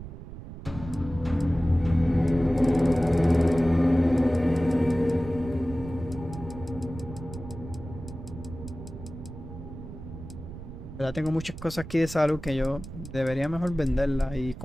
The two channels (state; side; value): noise; right; rumble, 12 dB below the sound